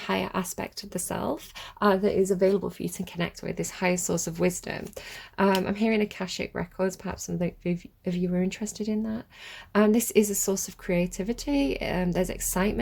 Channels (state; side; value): identical; both; correlation 1.00